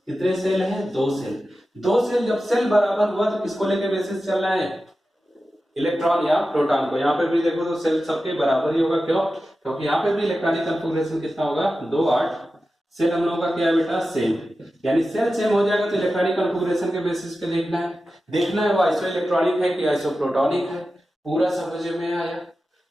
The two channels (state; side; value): normal; both; correlation 0.93